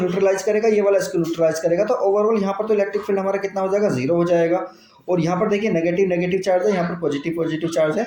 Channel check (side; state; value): both; identical; correlation 1.00